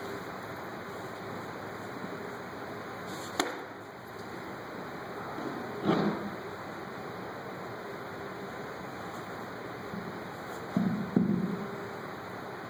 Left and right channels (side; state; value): both; identical; correlation 1.00